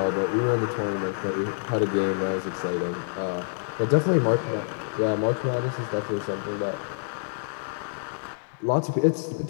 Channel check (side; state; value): right; silent; digital silence